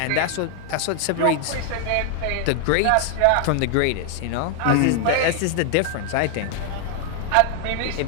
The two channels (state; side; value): different; both; correlation 0.00